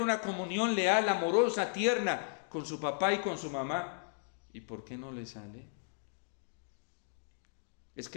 comunión leal, amorosa, tierna con su papá y con su mamá. ¿Y por qué no le sale? Es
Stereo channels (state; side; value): silent; right; digital silence